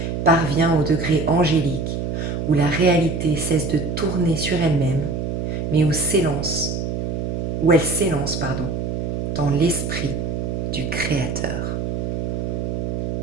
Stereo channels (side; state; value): right; noise; hum, 2 dB below the sound